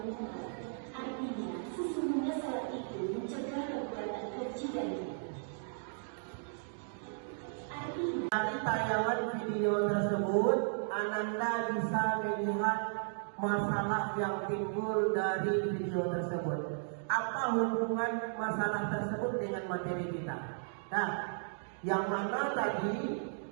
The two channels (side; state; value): left; silent; digital silence